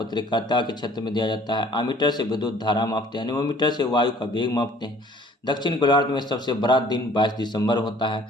के क्षेत्र में दिया जाता है। आमीटर से विद्युत धारा मापते हैं। एनीमोमीटर से वायु का वेग मापते हैं। दक्षिण गोलार्ध में सबसे बड़ा दिन 22 दिसंबर होता है।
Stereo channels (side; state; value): both; normal; correlation 0.54